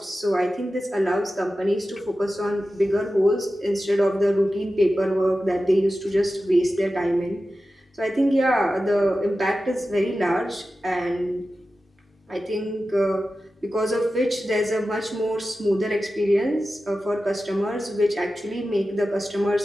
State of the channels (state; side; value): normal; both; correlation 0.93